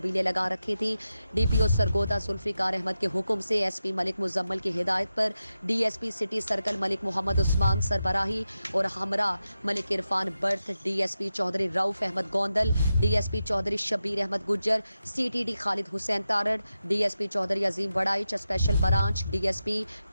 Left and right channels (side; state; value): both; inverted; correlation -0.91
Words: लगा रखी थी। DPO सरगोदा जुल्फिकार अहमद के हुक्म से SP मलिक मुजम्मल की हिदायत पर DSP city circle Malik Mohammad Usman सरबराही और हमरा मलिक इरफान बर्थ, DSP Chaudhry Rauf Ahmed Gondal, DSP Chaudhry Shabbir Ahmed Gujjar, CTD Khalid Hussain Tarar, DSP Chaudhry Azeem Waraich special branch, DSP